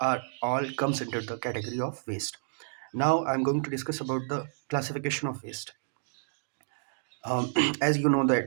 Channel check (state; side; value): silent; left; digital silence